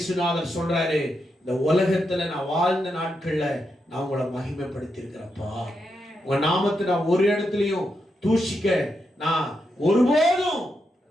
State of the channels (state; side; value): normal; both; correlation 0.84